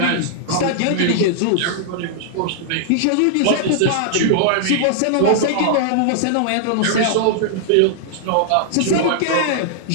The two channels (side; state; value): both; different; correlation -0.01